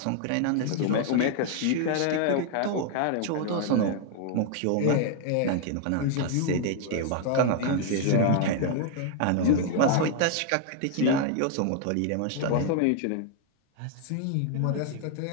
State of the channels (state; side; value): different; both; correlation 0.00